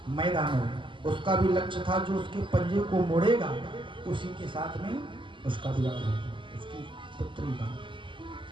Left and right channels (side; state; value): left; late; 0.24 ms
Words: मैदान, उसका भी लक्ष्य था जो उसके पंजे को मोड़ेगा उसी के साथ में उसका विवाह हुआ, उसकी पुत्री का।